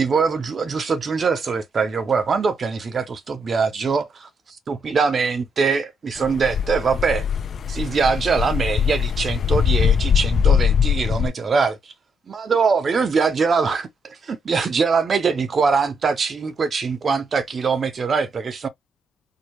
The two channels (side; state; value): both; normal; correlation 0.76